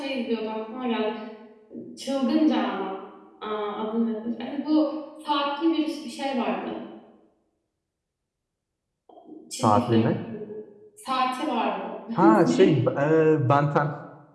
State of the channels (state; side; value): identical; both; correlation 1.00